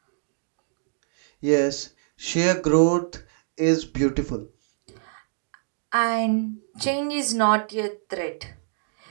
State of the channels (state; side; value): silent; left; digital silence